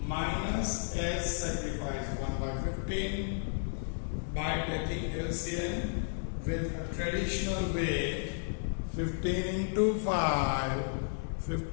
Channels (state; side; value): silent; right; digital silence